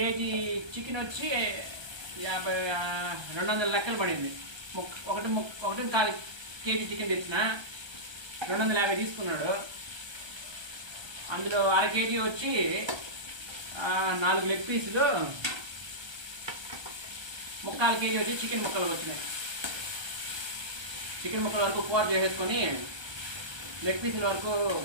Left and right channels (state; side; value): late; left; 1.3 ms